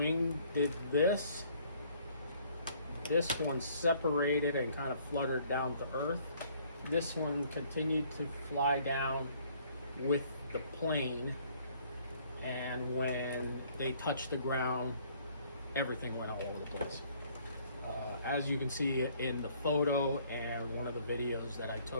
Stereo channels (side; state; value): both; inverted; correlation -0.61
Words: did this. This one separated and kind of fluttered down to earth. This one continued to fly down with the plane, and when they touched the ground, everything went all over the place. As you can see in the photo and one of the videos that I